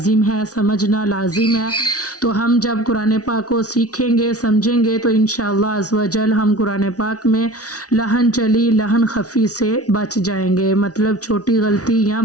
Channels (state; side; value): late; right; 0.68 ms